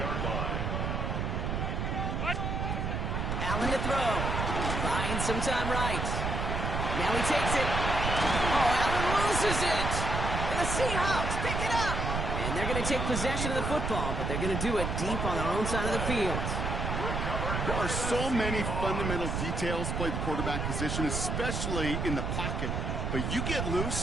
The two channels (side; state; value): right; noise; rumble, 1 dB below the sound